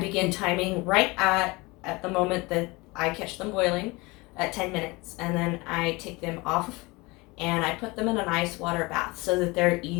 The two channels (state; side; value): quieter; right; 24.2 dB